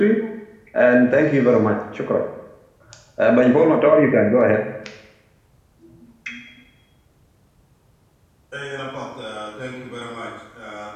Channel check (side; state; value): both; identical; correlation 1.00